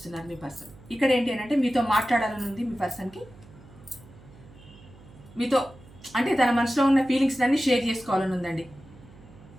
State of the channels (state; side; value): noise; right; hum, 22 dB below the sound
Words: మీ పర్సన్. ఇక్కడ ఏంటి అని అంటే మీతో మాట్లాడాలని ఉంది మీ పర్సన్కి. మీతో అంటే తన మనసులో ఉన్న ఫీలింగ్స్ అన్ని షేర్ చేసుకోవాలని ఉందండి.